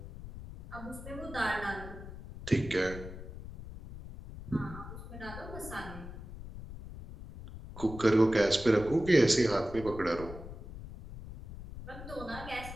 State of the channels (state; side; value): noise; left; rumble, 12 dB below the sound